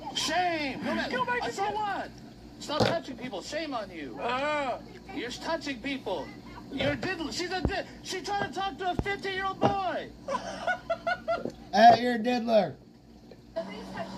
Shame. Go back to what? Stop touching people. Shame on you. You're touching people. You're diddler. She's trying to talk to a 15-year-old boy. You're a diddler.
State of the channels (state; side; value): identical; both; correlation 1.00